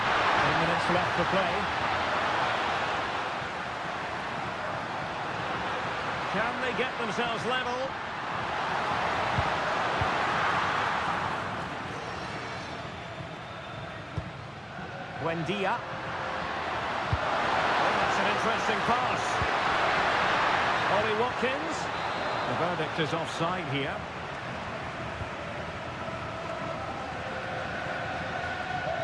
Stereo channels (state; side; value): identical; both; correlation 1.00